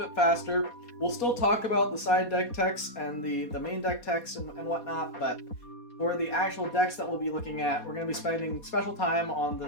faster. We'll still talk about the side deck techs and the main deck techs and whatnot, but for the actual decks that we'll be looking at, we're going to be spending special time on the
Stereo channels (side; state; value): right; late; 4.2 ms